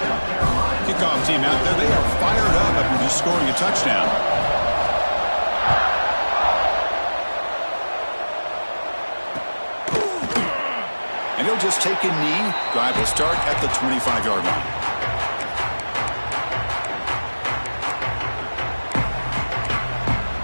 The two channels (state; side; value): inverted; both; correlation -1.00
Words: Kickoff team out there. They are fired up after just scoring a touchdown. And he'll just take a knee. Drive will start at the 25-yard line.